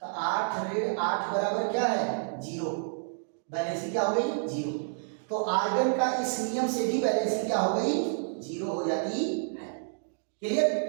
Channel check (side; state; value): left; silent; digital silence